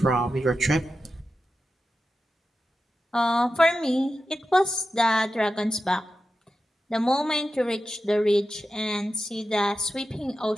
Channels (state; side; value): normal; both; correlation 0.91